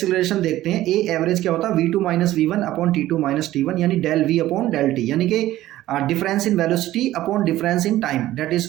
देखते हैं। ए एवरेज क्या होता है? v2 - v1 upon t2 - t1, यानी del v upon del T, यानी कि difference in velocity upon difference in time, that is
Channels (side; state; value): left; quieter; 14.9 dB